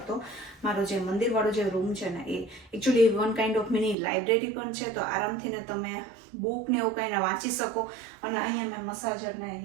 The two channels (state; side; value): drops out; left; at 4.0 s